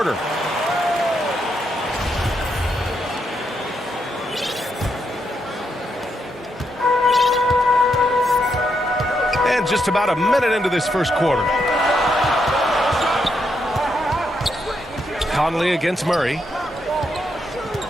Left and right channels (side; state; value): both; normal; correlation 0.80